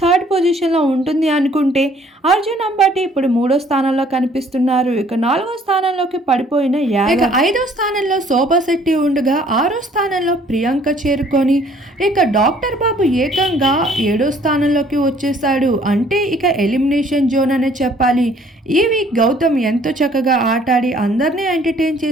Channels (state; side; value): normal; both; correlation 0.59